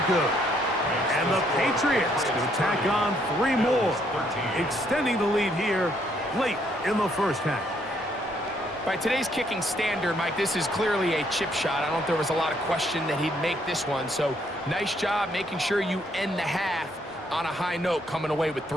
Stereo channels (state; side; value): normal; both; correlation 0.70